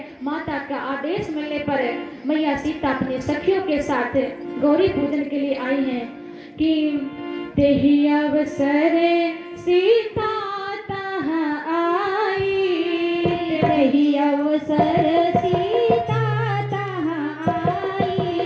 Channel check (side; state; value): both; identical; correlation 1.00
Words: माता का आदेश मिलने पर मैया सीता अपने सखियों के साथ गौरी पूजन के लिए आई हैं कि तेहि अवसर सीता तहाँ आई, तेहि अवसर सीता तहाँ आई,